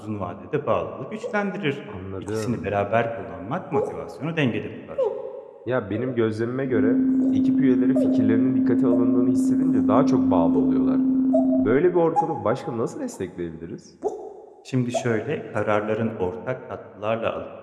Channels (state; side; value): identical; both; correlation 1.00